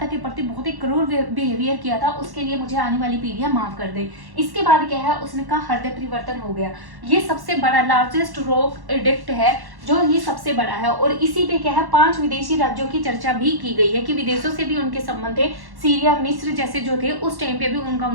के प्रति बहुत ही क्रूर बिहेवियर किया था, उसके लिए मुझे आने वाली पीढ़ियां माफ कर दे। इसके बाद क्या है, उसने कहा हृदय परिवर्तन हो गया। ये सबसे बड़ा लार्जेस्ट रॉक एडिक्ट है, जो ये सबसे बड़ा है। और इसी पे क्या है 5 विदेशी राज्यों की चर्चा भी की गई है कि विदेशों से भी उनके संबंध थे। सीरिया, मिस्र जैसे जो थे उस टाइम पे भी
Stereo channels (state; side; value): late; left; 1.1 ms